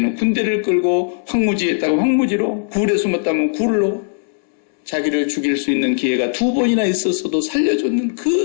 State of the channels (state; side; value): silent; right; 67 dB below the other